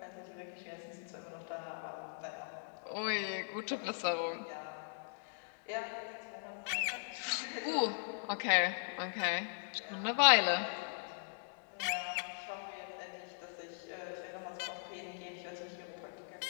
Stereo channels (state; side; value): silent; right; digital silence